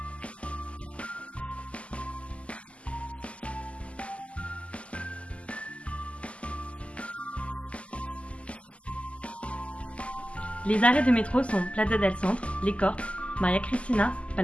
desde aquí, para cualquier sitio que te quieras mover, es cómodo. Tiene todas las líneas de metro y autobuses. El metro, los autobuses, todo muy bien organizado. Les arrêts de métro sont Plaza del Centre, Les Corts, María Cristina,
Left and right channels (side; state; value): right; late; 0.059 ms